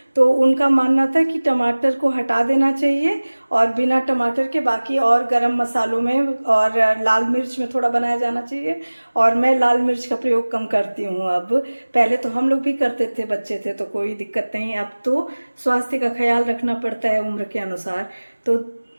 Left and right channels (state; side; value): inverted; both; correlation -1.00